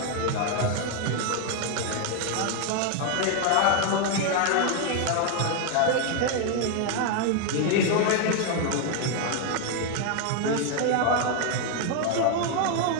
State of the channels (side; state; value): both; different; correlation 0.01